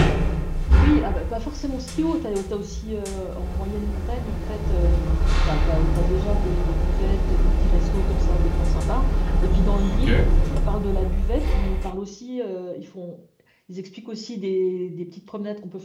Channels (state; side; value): identical; both; correlation 1.00